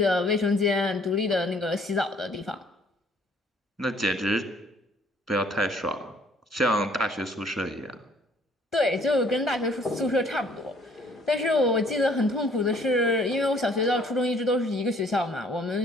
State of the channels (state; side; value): normal; both; correlation 0.60